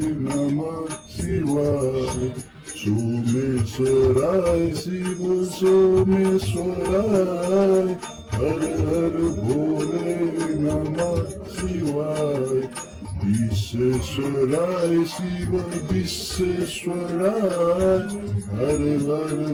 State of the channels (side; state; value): both; identical; correlation 1.00